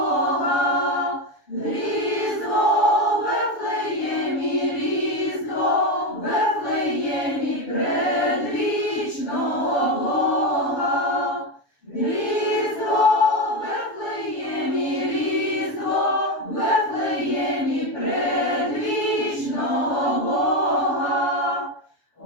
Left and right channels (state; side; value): late; right; 7.0 ms